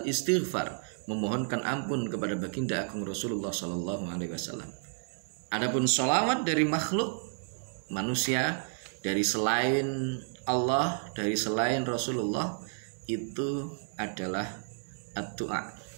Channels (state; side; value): silent; left; digital silence